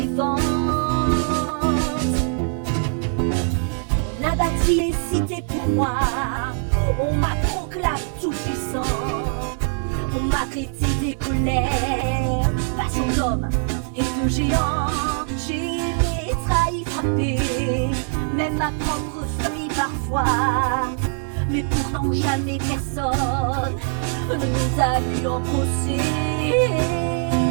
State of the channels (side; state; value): left; silent; 56 dB below the other